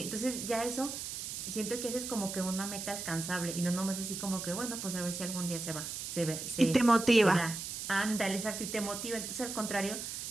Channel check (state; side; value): noise; right; hiss, 6 dB below the sound